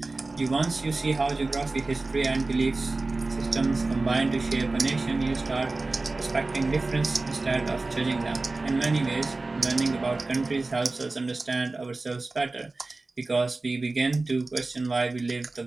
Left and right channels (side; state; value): left; quieter; 3.3 dB